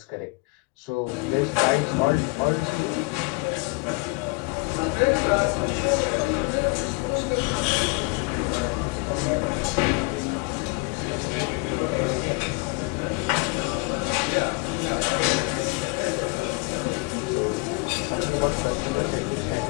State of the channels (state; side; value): quieter; right; 28.2 dB